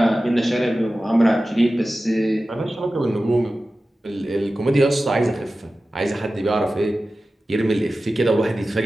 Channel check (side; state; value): both; normal; correlation 0.95